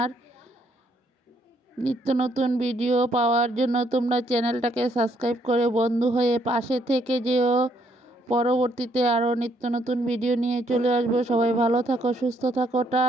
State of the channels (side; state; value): both; normal; correlation 0.70